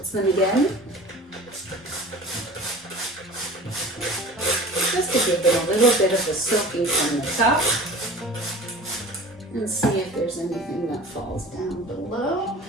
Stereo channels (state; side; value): normal; both; correlation 0.41